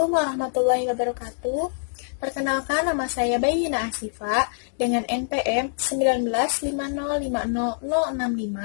warahmatullahi wabarakatuh. Perkenalkan, nama saya Bayyina Asifa dengan NPM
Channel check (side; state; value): right; silent; digital silence